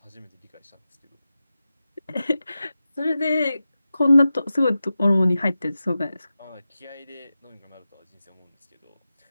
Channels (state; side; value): inverted; both; correlation -0.93